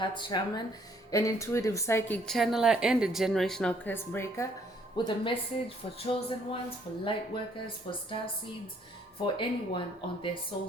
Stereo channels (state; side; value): normal; both; correlation 0.65